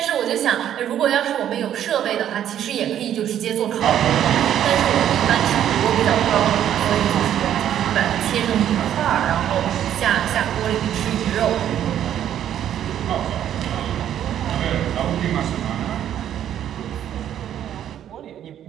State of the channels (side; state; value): left; quieter; 10.6 dB